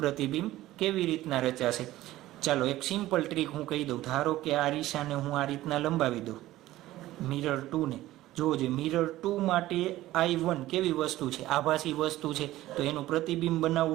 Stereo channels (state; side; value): quieter; left; 15.8 dB